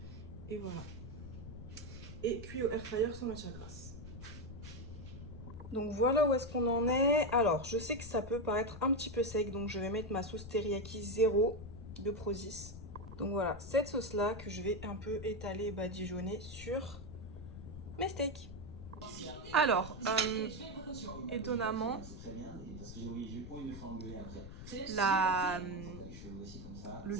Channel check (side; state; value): left; noise; rumble, 12 dB below the sound